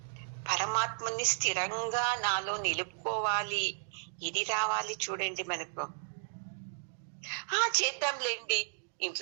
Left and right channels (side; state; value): left; silent; digital silence